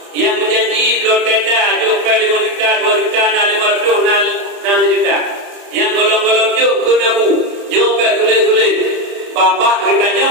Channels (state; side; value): late; left; 31 ms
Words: yang berjanji belum tenda jumpa 5 juta, 2 juta, 500, 6 juta. Yang golong-golong juk kena bu. Jumpa tulis. babah kitanya